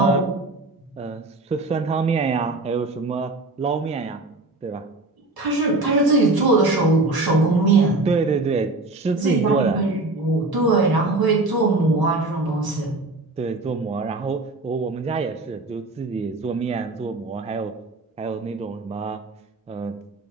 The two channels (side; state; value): left; quieter; 3.0 dB